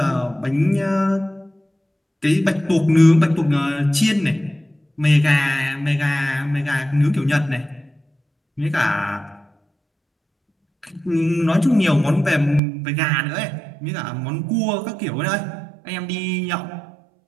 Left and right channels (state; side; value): drops out; left; at 12.6 s